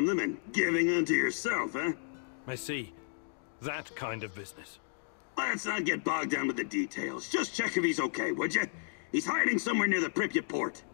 them and giving unto yourself, huh? I see. That kind of business. Let's not get bogged down with the details. Just check if he's okay, would you? He's hiding somewhere near the Pripyat port.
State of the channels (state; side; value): silent; right; digital silence